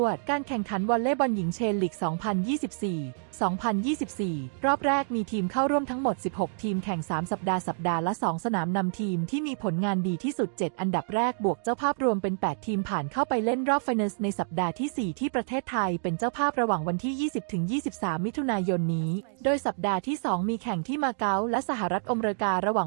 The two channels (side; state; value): left; silent; digital silence